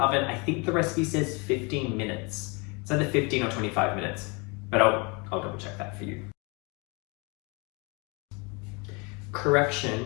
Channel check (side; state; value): right; quieter; 30.0 dB